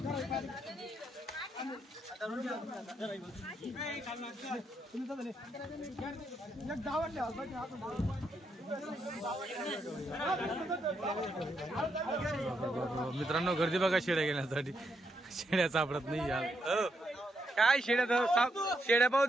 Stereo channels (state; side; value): normal; both; correlation 0.79